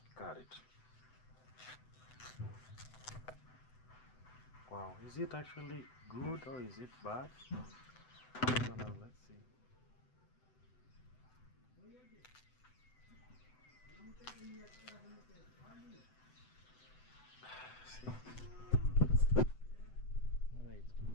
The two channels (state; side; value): late; right; 7.9 ms